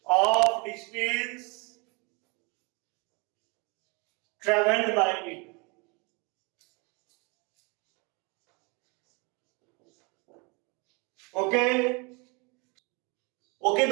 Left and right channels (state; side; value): quieter; left; 30.2 dB